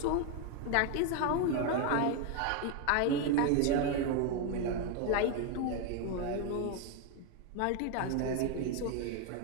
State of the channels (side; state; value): both; different; correlation 0.01